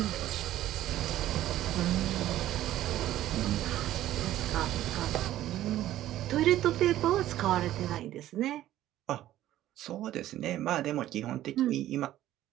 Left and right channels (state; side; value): quieter; left; 13.6 dB